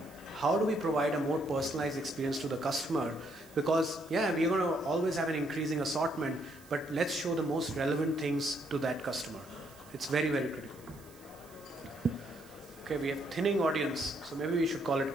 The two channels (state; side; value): noise; right; hiss, 24 dB below the sound